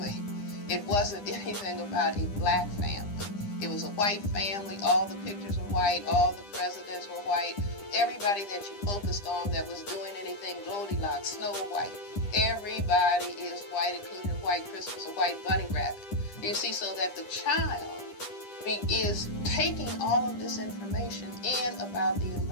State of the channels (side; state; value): right; late; 10 ms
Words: It wasn't anything about a black family. It was a white family, all the pictures were white, all the presidents were white. Everybody that you focused on that was doing anything Goldilocks, Snow White, everybody is white, including White Christmas, a white bunny rabbit. You see, so that the child is taking all of this information in about the